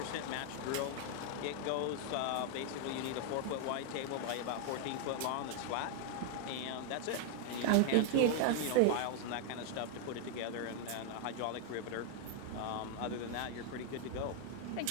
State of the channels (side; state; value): both; different; correlation 0.00